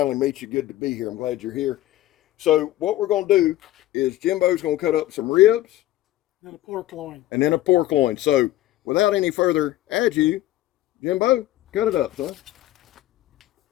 meet you. Good to be here. I'm glad you're here. So what we're going to do is Jimbo's going to cut up some ribs. And a pork loin. And then a pork loin. So without any further ado, Jimbo, cut it up, son.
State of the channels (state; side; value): quieter; right; 15.1 dB